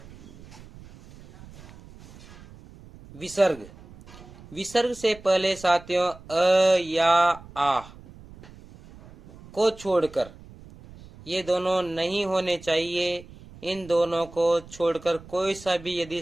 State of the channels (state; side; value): noise; right; rumble, 20 dB below the sound